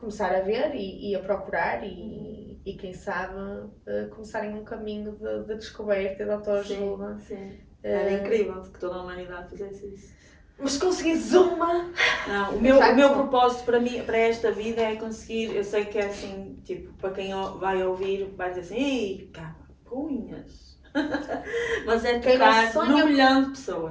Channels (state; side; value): identical; both; correlation 1.00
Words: a ver e a procurar e quem sabe começarem um caminho de descoberta e de autoajuda. Sim. Era incrível que toda a humanidade fizesse isso. Mas conseguires uma... Não, o meu propósito para esta vida é conseguir, eu sei que é assim, tipo, para quem vai ouvir vai dizer assim, ei, capunhas. Mas é tocar num milhão de